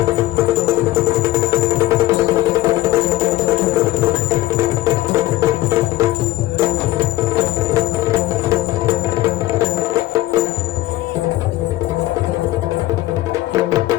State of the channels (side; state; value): right; quieter; 16.2 dB